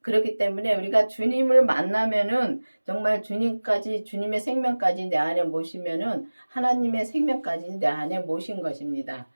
그렇기 때문에 우리가 주님을 만나면은 정말 주님의 생명까지 내 안에 모시면은 하나님의 생명까지 내 안에 모신 것입니다.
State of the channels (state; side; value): inverted; both; correlation -1.00